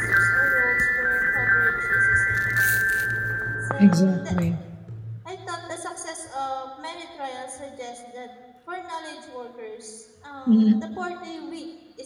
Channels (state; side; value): identical; both; correlation 1.00